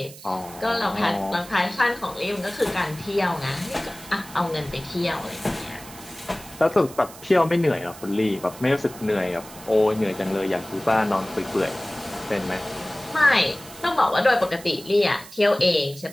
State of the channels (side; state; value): right; noise; hiss, 17 dB below the sound